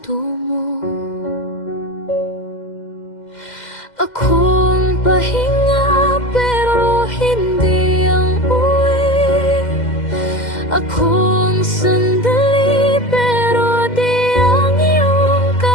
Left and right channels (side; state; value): right; late; 2.0 ms